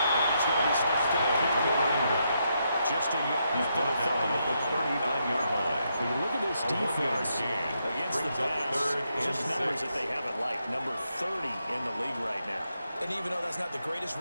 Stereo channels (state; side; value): inverted; both; correlation -0.80